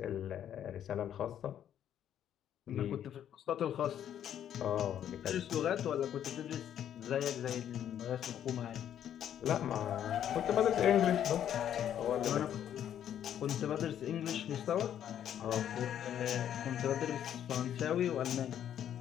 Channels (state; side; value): quieter; right; 10.1 dB